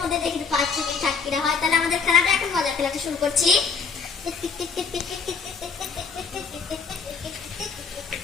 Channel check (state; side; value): quieter; right; 5.4 dB